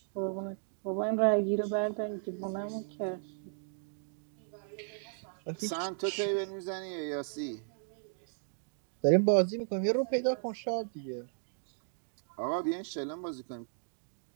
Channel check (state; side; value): silent; left; digital silence